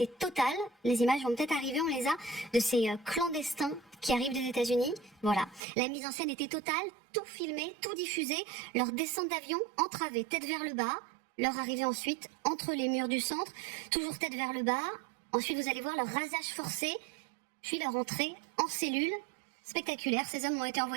totale. Les images vont peut-être arriver, on les a, de ces clandestins qui arrivent des États-Unis. Voilà, la mise en scène était totale, tout filmé, tout diffusé, leur descente d'avion entravée, tête vers le bas, leur arrivée ensuite entre les murs du centre, toujours tête vers le bas. Ensuite, vous allez voir leur rasage forcé, puis leur entrée en cellule. Spectaculaire, ces hommes ont été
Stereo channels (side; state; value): left; drops out; at 5.6 s